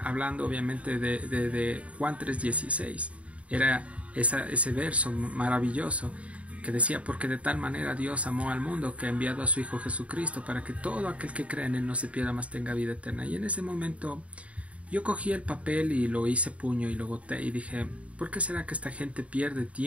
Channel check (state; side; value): late; left; 0.065 ms